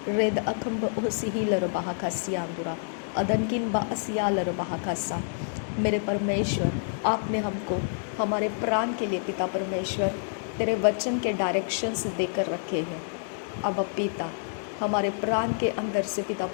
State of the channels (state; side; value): silent; right; digital silence